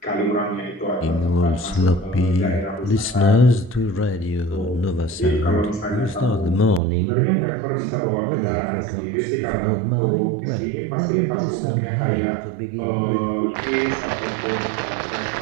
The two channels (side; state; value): left; drops out; at 6.8 s